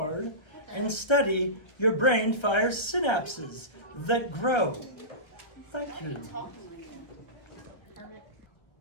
and study, your brain fires synapses that grow. Thank you.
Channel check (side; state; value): right; late; 1.3 ms